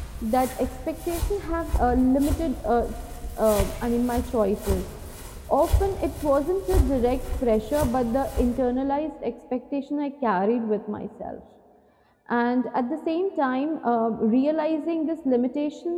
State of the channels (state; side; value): identical; both; correlation 1.00